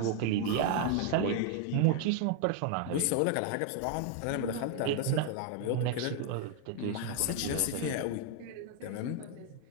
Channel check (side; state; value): both; different; correlation 0.00